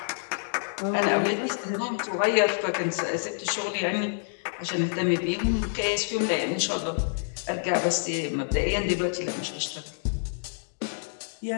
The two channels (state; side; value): silent; right; digital silence